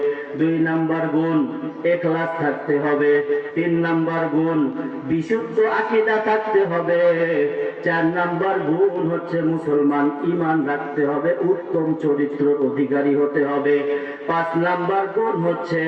2 নাম্বার গুণ ইখলাস থাকতে হবে। 3 নাম্বার গুণ বিশুদ্ধ আকীদা থাকতে হবে। 4 নাম্বার গুণ হচ্ছে মুসলমান ঈমান রাখতে হবে, উত্তম চরিত্রের অধিকারী হতে হবে। 5 নাম্বার গুণ হচ্ছে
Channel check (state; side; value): identical; both; correlation 1.00